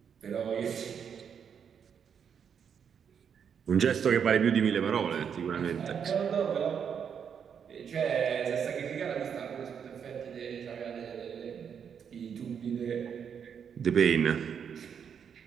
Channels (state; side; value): quieter; left; 7.5 dB